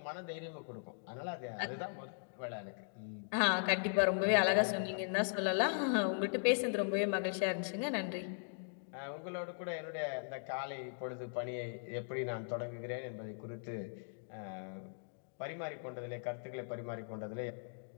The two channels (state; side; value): silent; right; digital silence